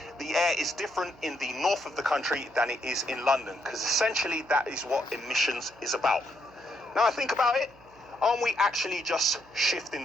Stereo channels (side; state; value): right; noise; hum, 27 dB below the sound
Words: the air is different in the north of the country than it is in London, because essentially that is what emissions is about. Now I think about it, aren't we actually just shifting